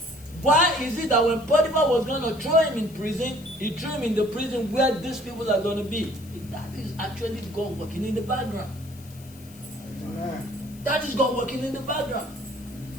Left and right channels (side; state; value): left; noise; hiss, 22 dB below the sound